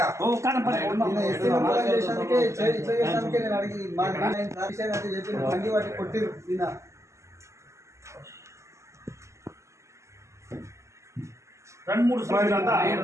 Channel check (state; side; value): late; left; 0.14 ms